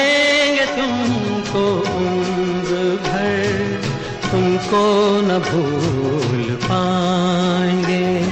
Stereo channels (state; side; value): identical; both; correlation 1.00